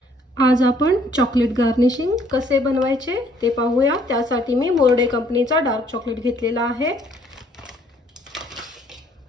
आज आपण चॉकलेट गार्निशिंग कसे बनवायचे ते पाहूया। त्यासाठी मी मोर्डे कंपनीचा डार्क चॉकलेट घेतलेला आहे।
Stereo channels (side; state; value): both; normal; correlation 0.63